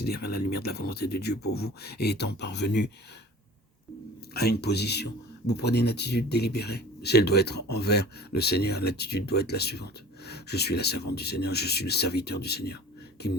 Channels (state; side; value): normal; both; correlation 0.43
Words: à la lumière de la volonté de Dieu pour vous, et étant parvenu à une position, vous prenez une attitude délibérée. Si elle doit être envers le Seigneur, l'attitude doit être la suivante: je suis la servante du Seigneur, je suis le serviteur du Seigneur, qu'il